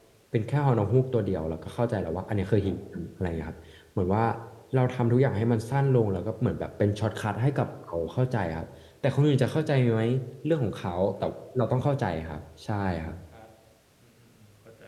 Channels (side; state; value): both; identical; correlation 1.00